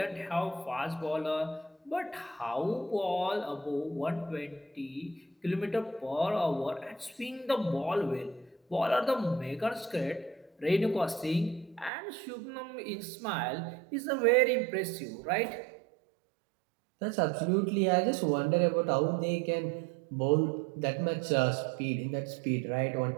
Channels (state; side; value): drops out; left; at 11.9 s